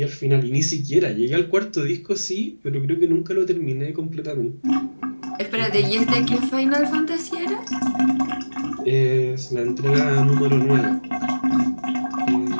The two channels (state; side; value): inverted; both; correlation -1.00